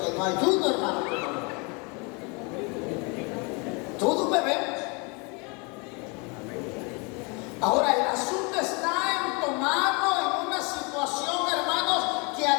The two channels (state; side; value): quieter; right; 31.0 dB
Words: no hay uno, hermano. Todos bebemos. Ahora, el asunto está en tomarlo en una situación, hermanos, que a